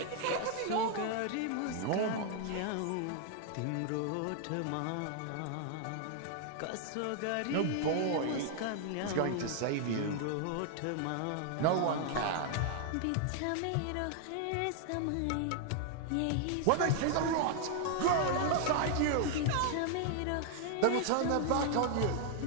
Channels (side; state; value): both; different; correlation 0.00